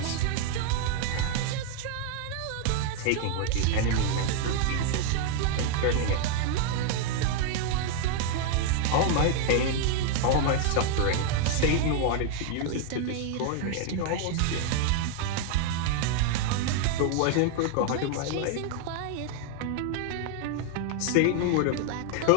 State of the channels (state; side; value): different; both; correlation 0.00